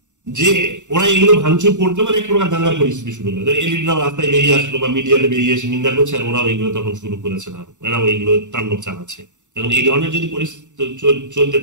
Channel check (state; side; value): late; left; 0.85 ms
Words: যে ওরা এগুলো ভাঙচুর করতো, মানে এক প্রকার দাঙ্গার পরিস্থিতি শুরু হলো। এলিটরাও রাস্তায় বেরিয়ে আসলো বা মিডিয়াতে বেরিয়ে এসে নিন্দা করছে, আর ওরাও এগুলো তখন শুরু করেছে না, এরাও এগুলো তাণ্ডব চালাচ্ছে। এখন এই ধরনের যদি পরিস্থিতি চলতে